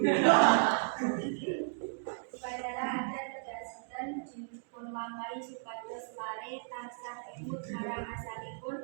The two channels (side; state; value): left; silent; digital silence